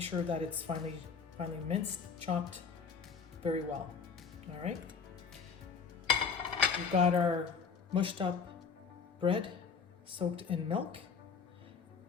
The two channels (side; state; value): right; quieter; 5.8 dB